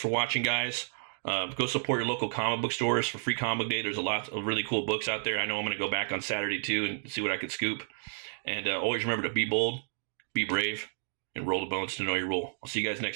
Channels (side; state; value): left; silent; digital silence